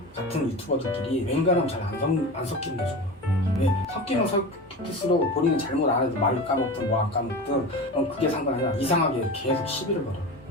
같은 유튜버들끼리 웬간하면 잘 안 섞이는 게 좋아. 왜? 섞이면 섞일수록 본인은 잘못 안 해도 말을 까먹든 뭐 안 까먹든 그게 상관 아니라 이상하게 계속 시비를 걸어.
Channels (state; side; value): normal; both; correlation 0.29